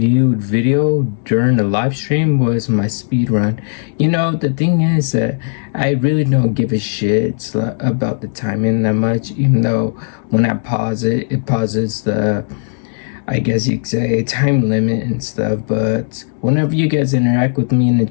video during the live stream was my speed run. You know, the thing is that I really don't give a shit about the timing that much, even though when I pause it, it pauses the, I guess you could say, time limit and stuff. But whenever you guys interact with me in the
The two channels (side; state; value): right; silent; digital silence